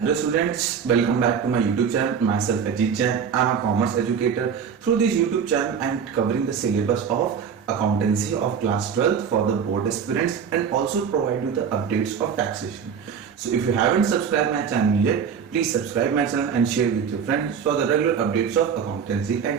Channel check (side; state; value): left; quieter; 7.0 dB